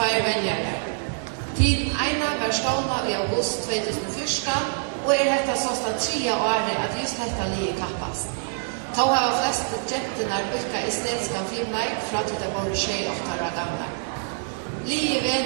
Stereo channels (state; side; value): silent; left; digital silence